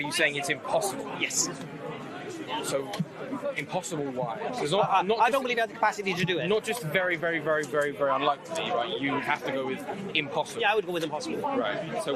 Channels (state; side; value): identical; both; correlation 1.00